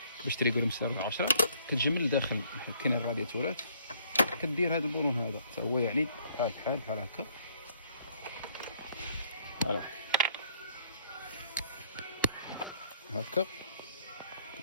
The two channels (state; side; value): inverted; both; correlation -0.63